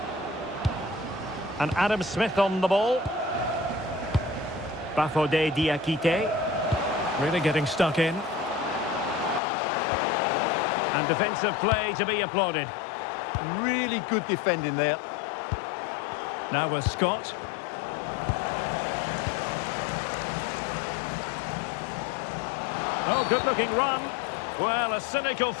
And Adam Smith on the ball. Bafode Diakite. Really getting stuck in. And defensive play to be applauded. Really good defending there. Now with Scott. Oh, good-looking run. Well, a cynical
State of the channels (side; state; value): right; drops out; at 9.4 s